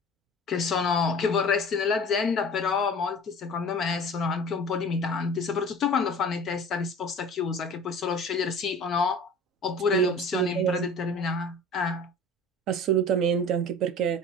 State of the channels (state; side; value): normal; both; correlation 0.41